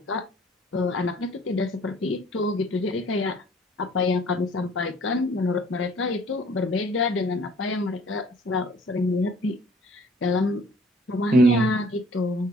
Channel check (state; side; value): normal; both; correlation 0.55